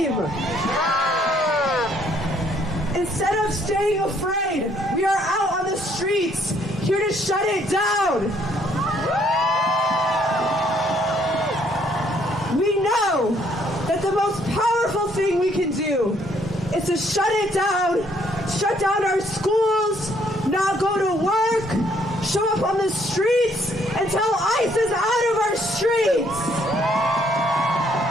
Instead of staying afraid, we are out on the streets here to shut it down. We know that the most powerful thing we can do is to shut it down, shut down our schools, not go to work, show up on the streets until ICE is out of our streets.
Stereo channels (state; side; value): normal; both; correlation 0.67